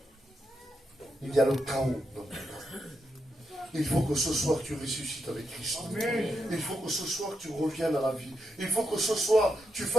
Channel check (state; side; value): normal; both; correlation 0.84